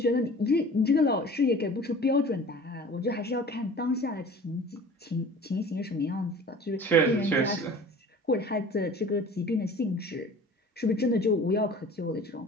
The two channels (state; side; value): normal; both; correlation 0.43